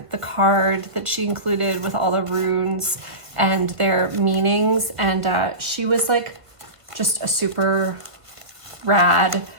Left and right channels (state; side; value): late; left; 1.6 ms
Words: the card that she included with all the runes and their meanings. And she was like just a super rad,